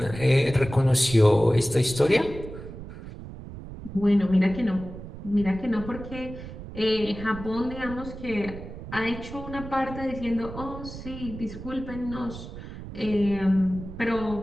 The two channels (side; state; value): right; noise; rumble, 12 dB below the sound